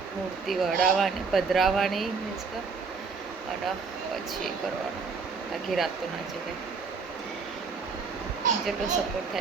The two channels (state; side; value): quieter; left; 5.0 dB